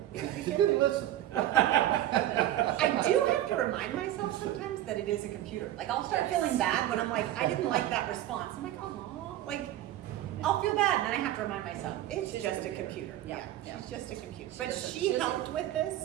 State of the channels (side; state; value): left; quieter; 13.3 dB